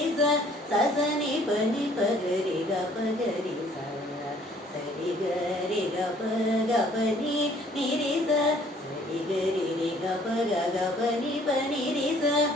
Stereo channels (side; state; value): both; normal; correlation 0.58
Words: సని పని పగరి గ పగరి సరి గరి గ పగ పని నిరి సరి గరి రి గ పగ గ పని పని రి